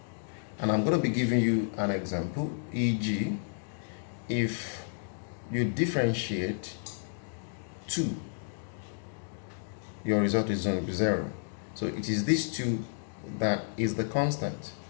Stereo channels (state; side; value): silent; right; digital silence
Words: And I'm going to be giving you an example, e.g., if you differentiate 2, your result is going to be 0. So it is this 2 that is the constant.